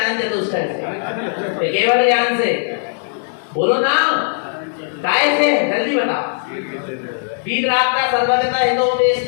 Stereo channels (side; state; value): right; silent; digital silence